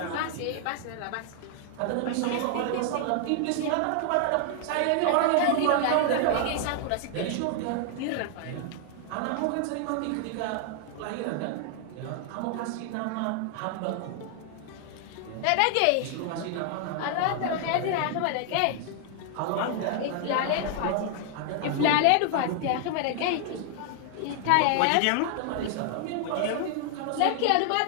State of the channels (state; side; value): different; both; correlation 0.00